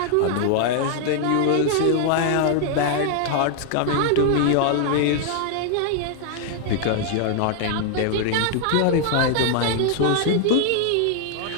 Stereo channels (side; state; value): both; different; correlation 0.00